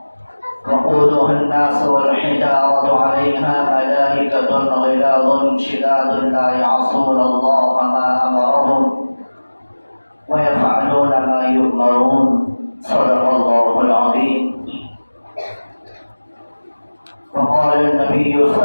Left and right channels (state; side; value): inverted; both; correlation -1.00